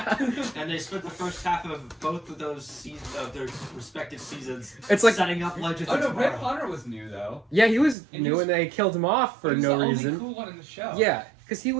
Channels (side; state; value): left; drops out; at 8.0 s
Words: And they spent the first half of both of those seasons of their respective seasons. It's like- setting up Legends Oh of no, Red Tomorrow. Hunter was new though. yeah, he was And he new was- and they killed him off for He was no the reason. only cool one in the show. Yeah, because he